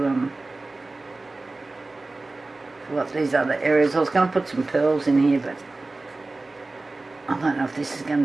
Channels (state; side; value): quieter; left; 3.2 dB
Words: fill up these other areas. I was going to put some pearls in here, but I don't know if this is